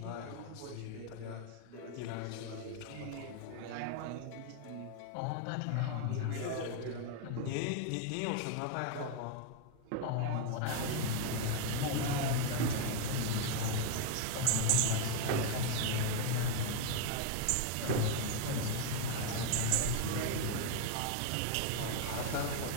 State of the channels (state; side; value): different; both; correlation 0.01